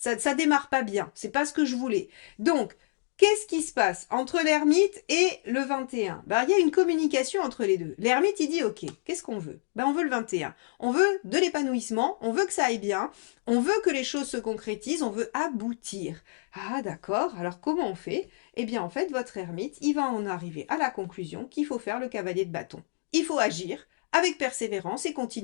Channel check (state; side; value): silent; right; 59 dB below the other